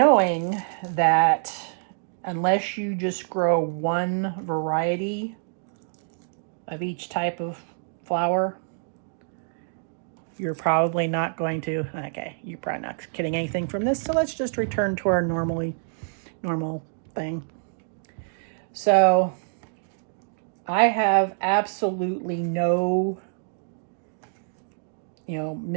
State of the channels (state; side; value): silent; left; digital silence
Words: that unless you just grow one variety of each type of flower, you're probably not going to, okay, you're probably not getting anything from this, so let's just return to our normal thing. So I have absolutely no,